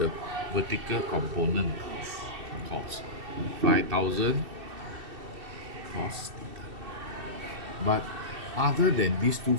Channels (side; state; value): left; late; 2.7 ms